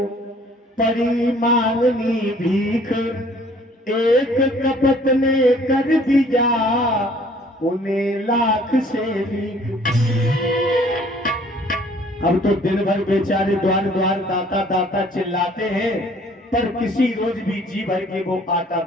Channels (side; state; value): both; normal; correlation 0.56